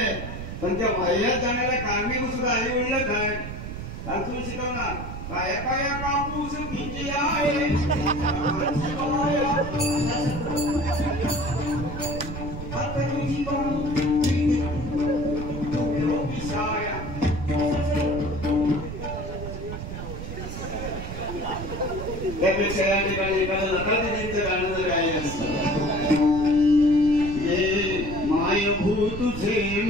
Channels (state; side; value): noise; right; rumble, 8 dB below the sound